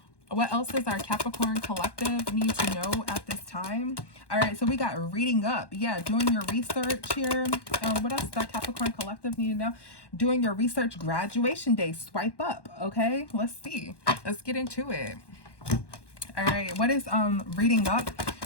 What else does our Capricorn collective need to know at this time? All right, so we got reading up. Yeah, doing your research here. What else does our Capricorn collective need to know? Doing your research, graduation day, swipe up. Okay, let's see. Let's get into it. All right, what is reading up?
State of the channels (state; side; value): late; right; 1.1 ms